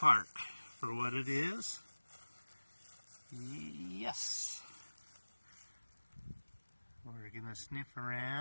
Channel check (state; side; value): inverted; both; correlation -1.00